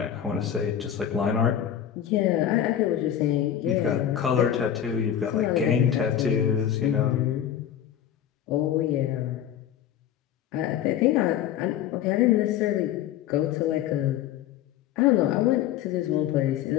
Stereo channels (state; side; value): quieter; right; 10.3 dB